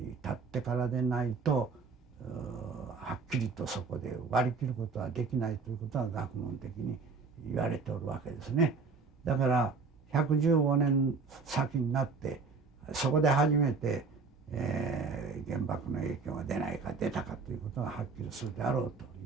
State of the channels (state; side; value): quieter; left; 4.7 dB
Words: 経ってからでないとはっきりとそこで割り切ることはできないということは学問的に言われておるわけですね。だから115年先になってそこで初めて、原爆の影響が出ないか出たかということがはっきりするであろうと